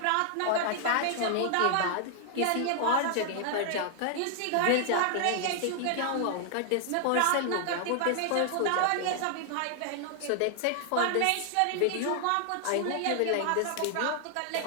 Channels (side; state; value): both; different; correlation 0.00